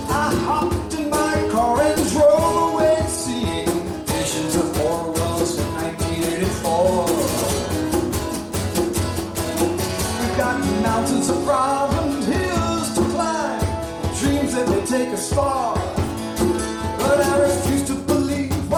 I hopped in my car and drove away seeing visions of Orwell's 1984. We've got mountains of problems, hills to climb, dreams that may take us far. But I refuse to believe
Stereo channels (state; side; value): identical; both; correlation 1.00